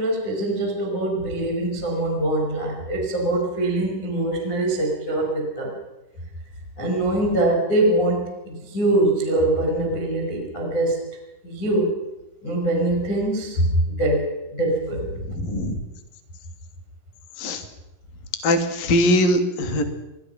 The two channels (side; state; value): right; late; 10 ms